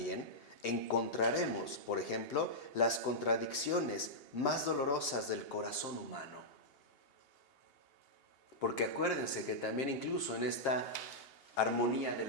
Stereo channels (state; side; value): late; right; 2.8 ms